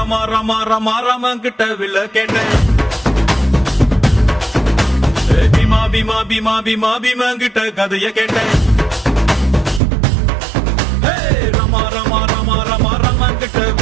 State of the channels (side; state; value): left; drops out; at 9.8 s